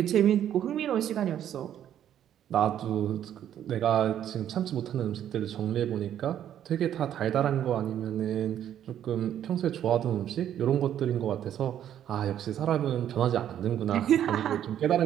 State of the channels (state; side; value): quieter; left; 10.5 dB